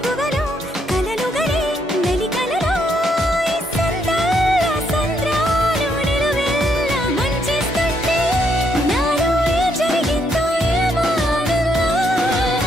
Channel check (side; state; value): both; normal; correlation 0.74